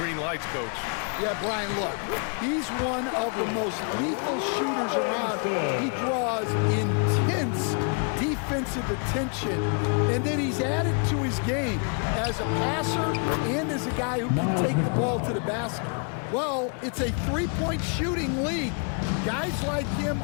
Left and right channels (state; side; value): quieter; right; 40.0 dB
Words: lights, Coach. Yeah, Brian, look, he's one of the most lethal shooters around. He draws intense defensive attention, and then he's added to his game as a passer and as a guy who can take the ball to the basket. Well, it's a 3-point shooting league. Guys like him